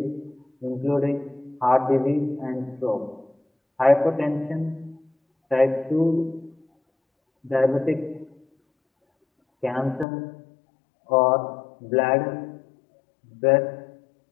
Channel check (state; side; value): drops out; right; at 10.1 s